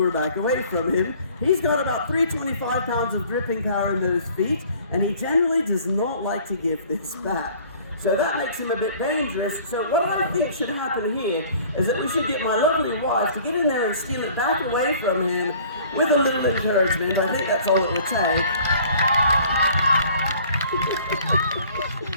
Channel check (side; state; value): both; inverted; correlation -0.52